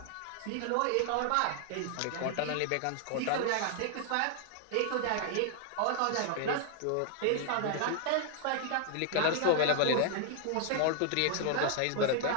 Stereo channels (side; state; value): both; different; correlation 0.00